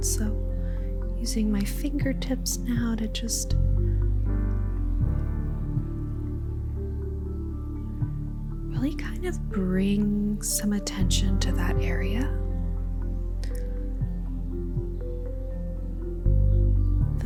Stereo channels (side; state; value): both; identical; correlation 1.00